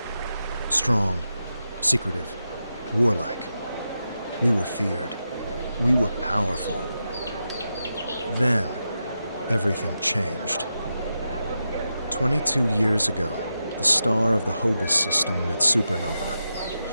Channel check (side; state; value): both; inverted; correlation -0.88